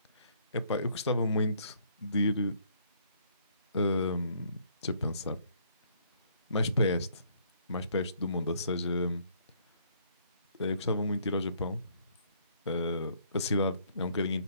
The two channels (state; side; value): inverted; both; correlation -0.65